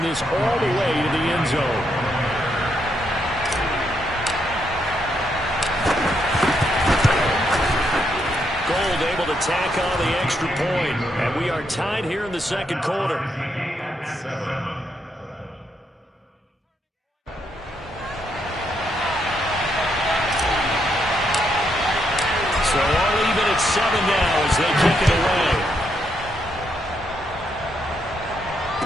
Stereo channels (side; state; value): both; normal; correlation 0.78